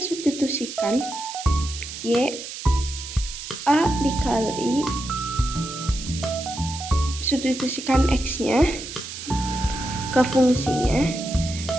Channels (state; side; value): noise; right; hiss, 10 dB below the sound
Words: Y A dikali substitusikan X-nya ke fungsinya.